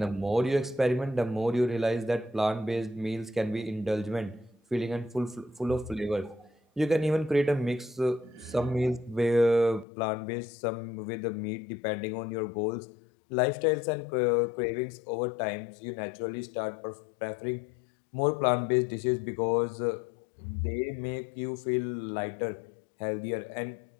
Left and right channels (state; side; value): drops out; right; at 9.9 s